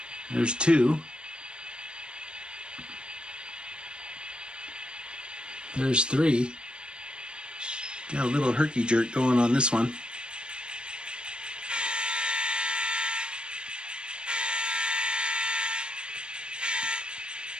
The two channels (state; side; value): late; left; 0.054 ms